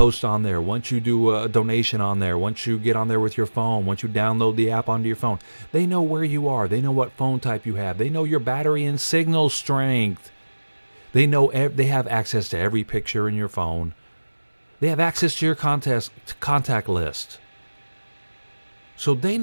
on there, once you do a donation on there, once you get on there with your phone, once you download the app onto your phone, they know where you are. They know what phone type you have. They know your battery and signal strength. They know they have access to every picture in your phone. They have access to your contact list. So they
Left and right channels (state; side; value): inverted; both; correlation -1.00